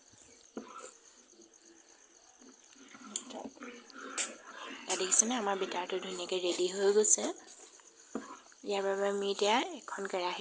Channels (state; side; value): identical; both; correlation 1.00